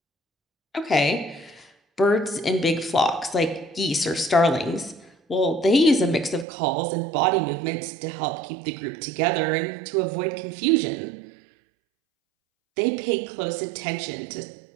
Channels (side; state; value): left; drops out; at 6.5 s